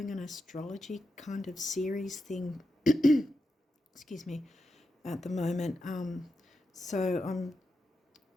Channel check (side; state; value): both; normal; correlation 0.87